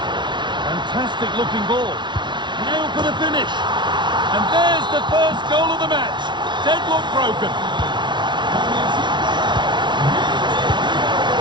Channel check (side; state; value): left; late; 0.22 ms